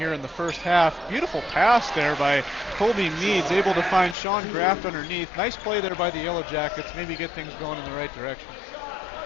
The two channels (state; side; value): drops out; right; at 4.2 s